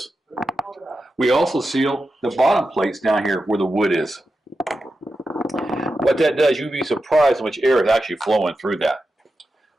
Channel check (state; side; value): normal; both; correlation 0.90